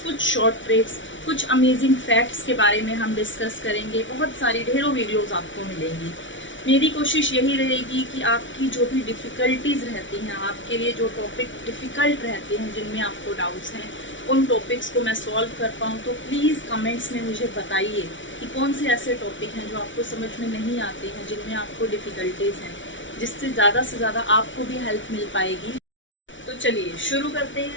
कुछ शॉर्ट ट्रिक्स, कुछ अमेजिंग फैक्ट्स के बारे में हम डिस्कस करेंगे। बहुत सारी ढेरों वीडियोज़ आपको मिलेंगी। मेरी कोशिश यही रहेगी कि आपकी जो भी डिफ़िकल्टीज़ रहती हैं, आपके लिए जो टॉपिक डिफ़िकल्ट रहते हैं, जिनमें आपको डाउट्स हैं, उन टॉपिक्स को मैं सॉल्व कर पाऊँ। तो प्लीज़ कमेंट्स में मुझे बताइए कि कौन से ऐसे टॉपिक हैं जो आपको समझ में नहीं आते हैं, जिनमें आपको डिफ़िकल्टीज़ हैं, जिससे ज़्यादा से ज़्यादा आपको भी हेल्प मिल पाएगी। तो चलिए शुरू करते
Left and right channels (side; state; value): right; late; 0.56 ms